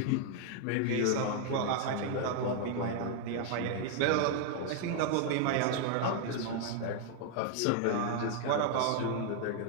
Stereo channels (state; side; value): different; both; correlation 0.00